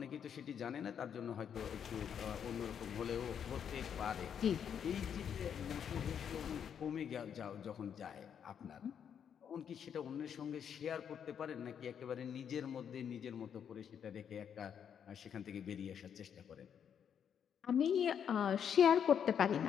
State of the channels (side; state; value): right; quieter; 8.1 dB